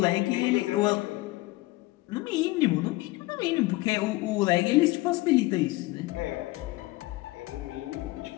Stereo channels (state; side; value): quieter; right; 20.2 dB